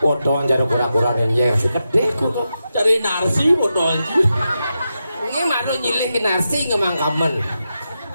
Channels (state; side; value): inverted; both; correlation -0.88